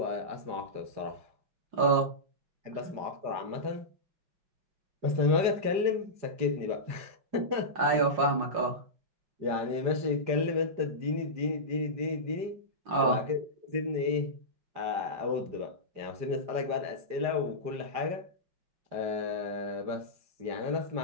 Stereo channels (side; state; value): left; late; 5.0 ms